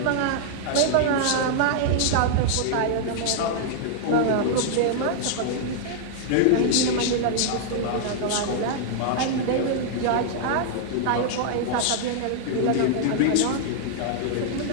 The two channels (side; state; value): both; different; correlation -0.01